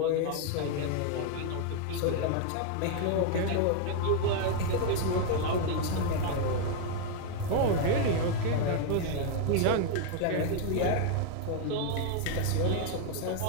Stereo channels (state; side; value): different; both; correlation 0.00